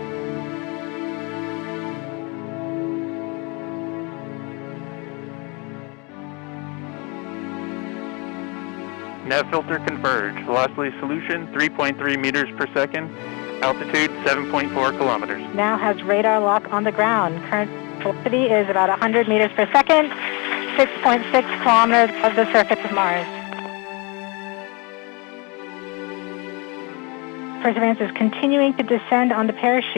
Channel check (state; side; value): quieter; right; 30.3 dB